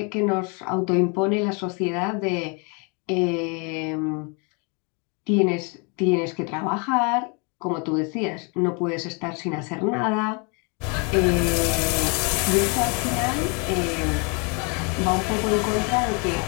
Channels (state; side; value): quieter; right; 34.1 dB